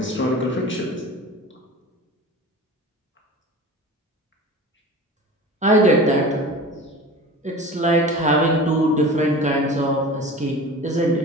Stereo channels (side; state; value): both; normal; correlation 0.36